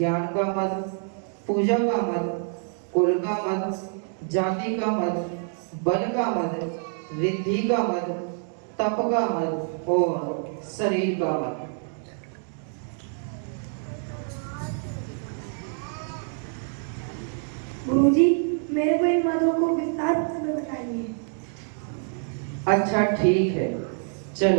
का मद, पूजा का मद, कुल का मद, जाति का मद, बल का मद, रिद्धि का मद, तप का मद और शरीर का मद। गुरुजी, मेरे को इन मदों को विस्तार में बताइए। अच्छा ठीक है,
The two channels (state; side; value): silent; left; 55 dB below the other